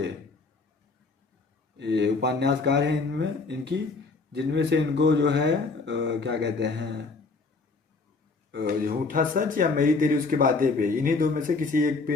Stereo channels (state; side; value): quieter; right; 4.0 dB